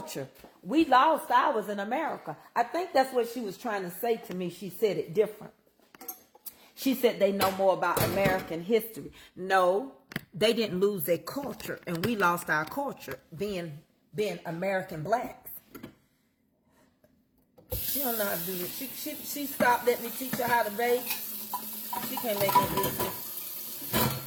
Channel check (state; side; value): identical; both; correlation 1.00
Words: We lost ours in America. I think that's what she was trying to say to me. She said it different. She said they know more about American history. No, they didn't lose their culture, and we lost our culture being American blacks. She don't know how to do this. She stopped letting me teach her how to bake. She can't make no biscuits.